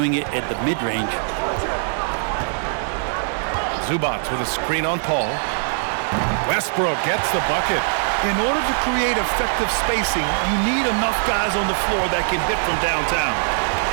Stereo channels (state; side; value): silent; left; digital silence